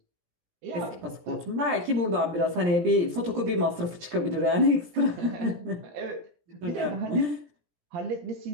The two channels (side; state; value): left; late; 17 ms